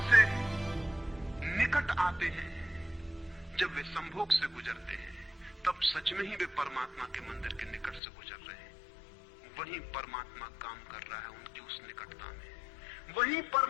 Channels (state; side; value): drops out; right; at 8.0 s